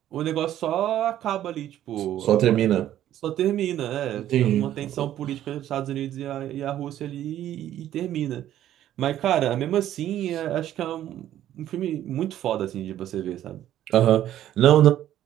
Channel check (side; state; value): left; quieter; 12.1 dB